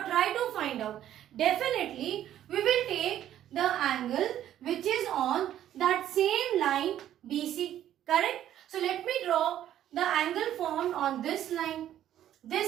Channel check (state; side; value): quieter; left; 11.6 dB